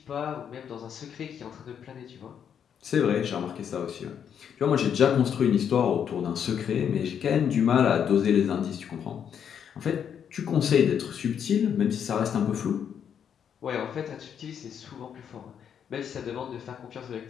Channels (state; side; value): quieter; right; 8.2 dB